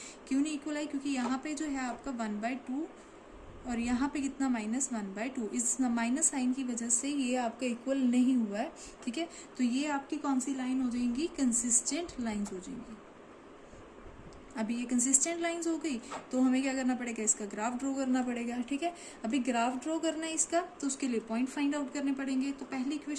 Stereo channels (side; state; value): both; identical; correlation 1.00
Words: क्यों नहीं इक्वल आई, क्योंकि यहाँ पे जो है आपका 1/2 और यहाँ पे कितना -1/2, इस माइनस साइन की वजह से ये आपका इक्वल नहीं हुआ है, ठीक है। तो ये आपकी कौन सी लाइन हो जाएंगी, कंसिस्टेंट लाइंस हो जाएंगी। अभी ये कंसिस्टेंट लाइंस हो गई, तो हमें क्या करना पड़ेगा, इसका ग्राफ ड्रॉ करना पड़ेगा, ठीक है। अभी ग्राफ ड्रॉ करना है इसका, तो उसके लिए पॉइंट फाइंड आउट करने पड़ेंगे। तो पहली